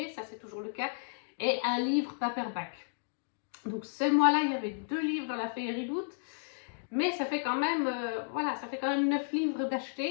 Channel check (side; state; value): right; silent; digital silence